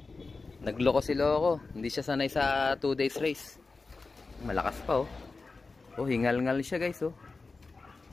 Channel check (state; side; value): quieter; right; 4.0 dB